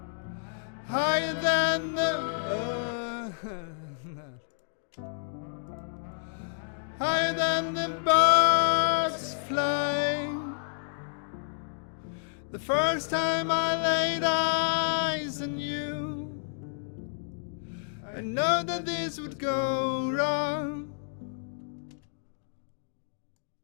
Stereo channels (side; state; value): right; silent; digital silence